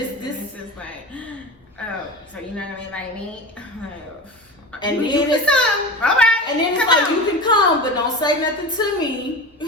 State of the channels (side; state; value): both; normal; correlation 0.29